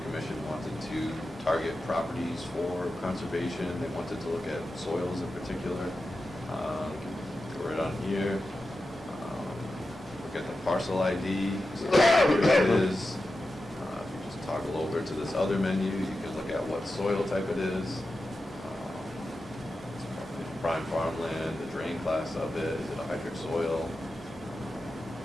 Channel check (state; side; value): normal; both; correlation 0.92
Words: Commission wanted to target properties for conservation. They wanted to look at soils in particular. Go right on here. Look at the parcel ID. So here it is. If you just toggle over to this other menu, you can look at what soil type it is. Prime farmland, the drain class of it. Is it a hydric soil?